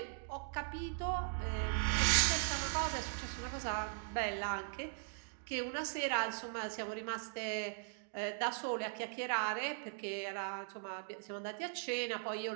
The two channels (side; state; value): left; silent; digital silence